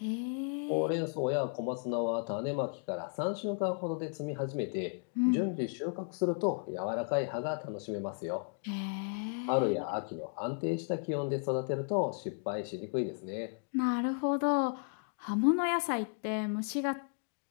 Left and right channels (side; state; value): right; silent; 55 dB below the other